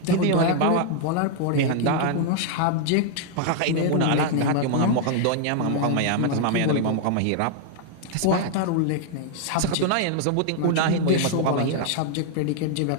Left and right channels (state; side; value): different; both; correlation 0.00